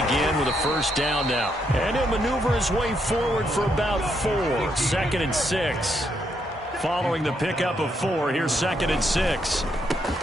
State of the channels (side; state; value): both; normal; correlation 0.77